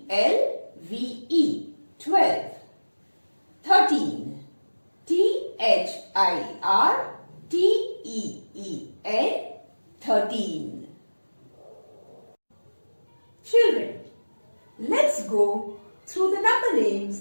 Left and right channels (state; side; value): inverted; both; correlation -1.00